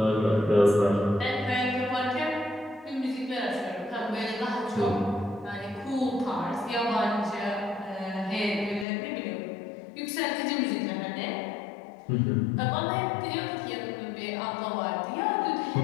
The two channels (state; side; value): drops out; right; at 8.8 s